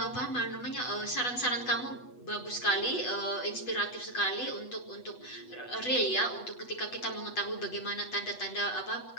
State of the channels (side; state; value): right; late; 8.0 ms